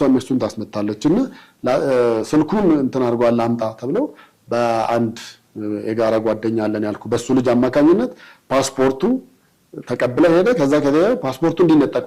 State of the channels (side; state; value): both; identical; correlation 1.00